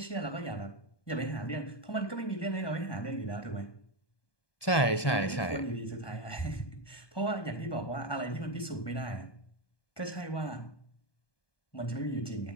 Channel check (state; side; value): late; right; 1.2 ms